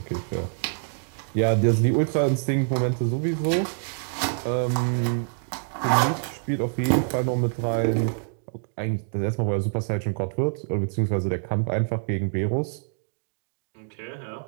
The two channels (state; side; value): silent; left; digital silence